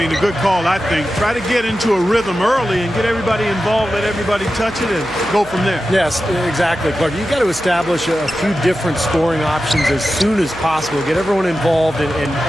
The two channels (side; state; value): right; noise; hum, 18 dB below the sound